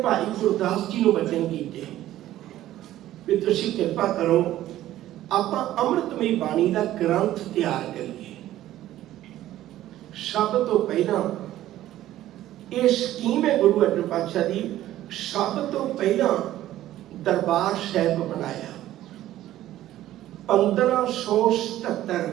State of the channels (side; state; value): left; quieter; 13.8 dB